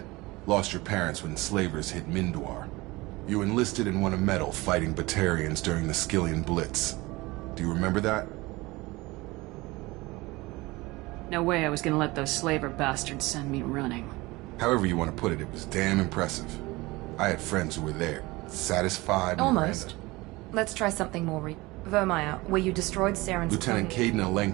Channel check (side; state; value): left; quieter; 21.6 dB